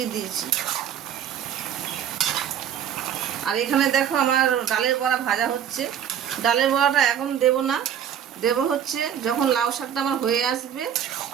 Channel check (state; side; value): quieter; left; 9.2 dB